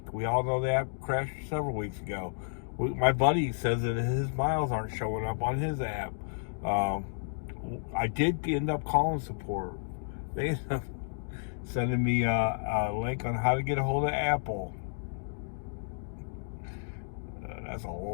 We all know the app crashed several weeks ago. My buddy says that his miles aren't showing up on his app. I did end up calling support. They ended up sending me a link on how to get a hold of Apple. That's a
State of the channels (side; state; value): right; silent; digital silence